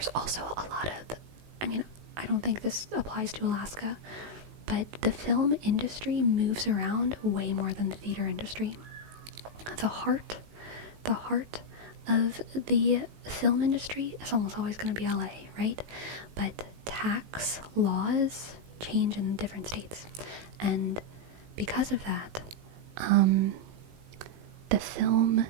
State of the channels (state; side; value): late; left; 18 ms